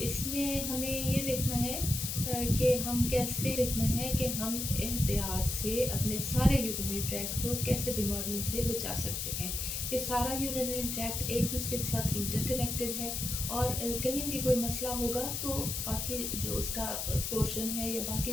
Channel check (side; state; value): left; noise; hiss, 3 dB below the sound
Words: हमें ये देखना है कि हम कैसे देखना है कि हम एहतियात से अपने सारे यूरिनरी ट्रैक्ट को कैसे बीमारियों से बचा सकते हैं। ये सारा यूरिनरी ट्रैक्ट एक दूसरे के साथ इंटरकनेक्टेड है, और कहीं भी कोई मसला होगा तो बाकी जो उसका पोर्शन है या बाकी